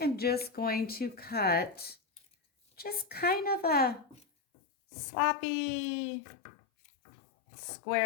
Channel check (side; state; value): right; drops out; at 4.2 s